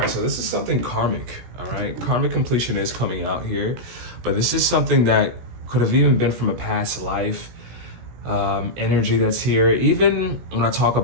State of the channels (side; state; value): left; late; 17 ms